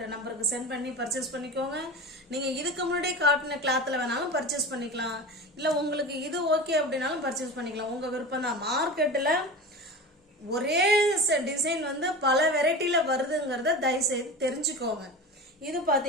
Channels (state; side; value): normal; both; correlation 0.30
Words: நம்பருக்கு சென்ட் பண்ணி பர்ச்சேஸ் பண்ணிக்கோங்க. நீங்கள் இதுக்கு முன்னாடி காட்டின கிளாத்தில் வேணாலும் பர்ச்சேஸ் பண்ணிக்கலாம், இல்லை உங்களுக்கு இது ஓகே அப்படின்னாலும் பர்ச்சேஸ் பண்ணிக்கலாம், உங்கள் விருப்பம் தான். மார்க்கெட்டில் ஒரே டிசைன் வந்து பல வெரைட்டியில் வருதுங்கிறத தயவுசெய்து தெரிஞ்சுக்கோங்க. இது